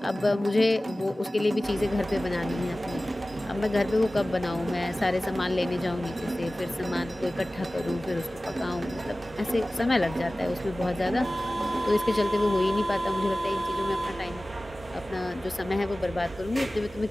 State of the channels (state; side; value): normal; both; correlation 0.97